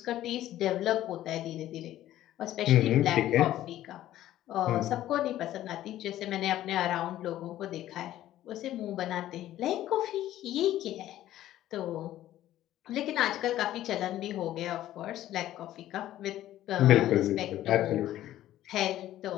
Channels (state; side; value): quieter; right; 13.4 dB